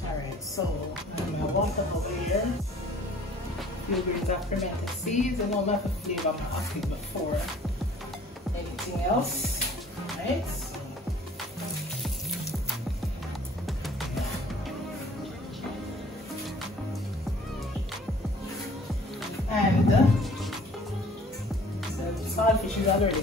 All right. So I'm gonna bump it over here. A few grains of pimento seeds. I know I have to flavor my Ackee before anything else. All right. And the saltfish is already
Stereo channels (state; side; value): normal; both; correlation 0.52